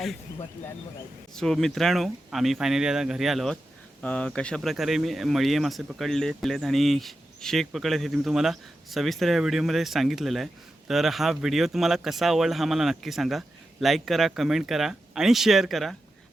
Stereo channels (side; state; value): both; normal; correlation 0.90